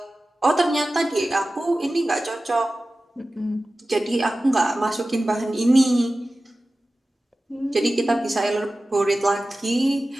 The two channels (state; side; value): normal; both; correlation 0.96